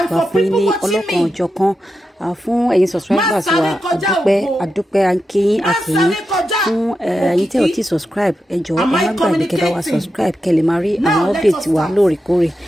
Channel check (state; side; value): normal; both; correlation 0.88